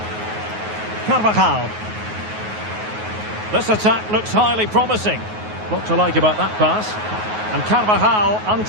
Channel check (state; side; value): late; left; 9.4 ms